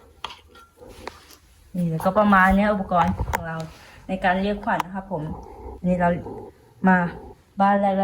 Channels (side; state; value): both; identical; correlation 1.00